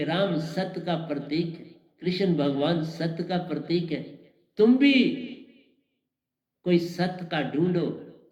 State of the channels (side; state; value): both; identical; correlation 1.00